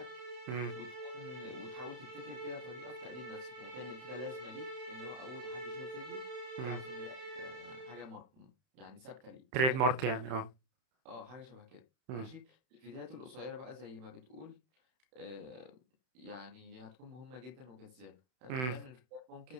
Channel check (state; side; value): late; left; 31 ms